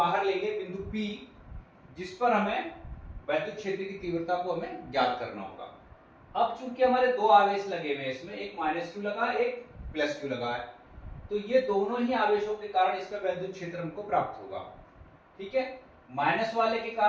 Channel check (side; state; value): both; identical; correlation 1.00